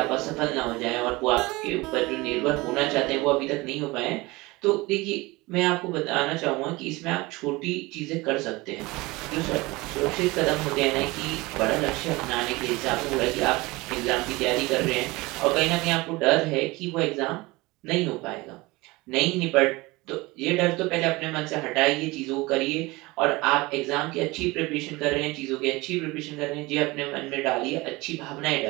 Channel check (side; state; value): left; quieter; 22.3 dB